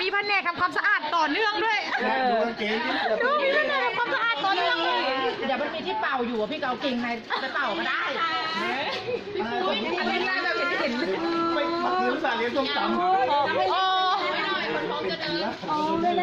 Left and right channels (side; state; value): both; identical; correlation 1.00